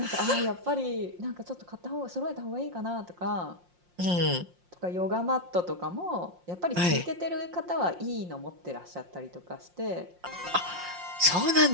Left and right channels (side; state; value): left; late; 5.6 ms